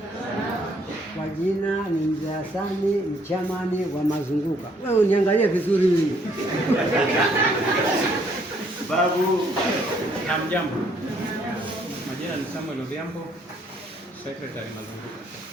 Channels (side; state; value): both; normal; correlation 0.66